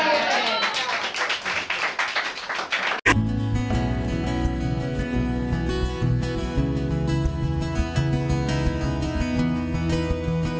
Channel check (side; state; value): both; identical; correlation 1.00